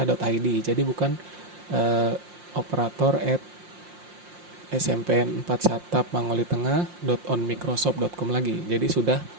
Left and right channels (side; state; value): left; late; 5.7 ms